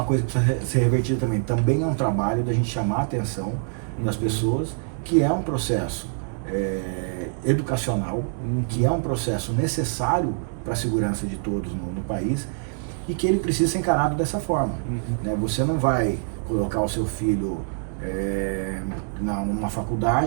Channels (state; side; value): silent; left; 62 dB below the other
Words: coisa que precisa ser revertida também. Também é um trabalho da gente chamar a atenção das pessoas, que é um processo educacional, que é um processo necessário para a segurança de todos no país, e que ele precisa ser encarado dessa forma. Né? Você não vai colocar o seu filho numa